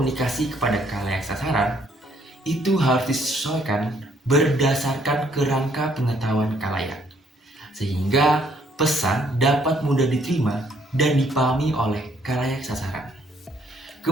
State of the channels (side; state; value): both; normal; correlation 0.67